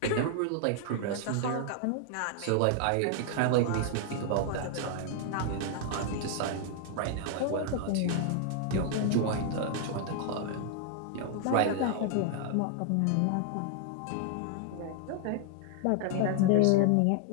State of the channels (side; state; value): both; different; correlation 0.00